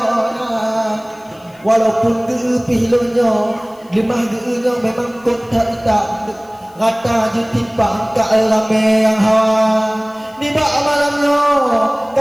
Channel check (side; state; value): left; noise; hiss, 30 dB below the sound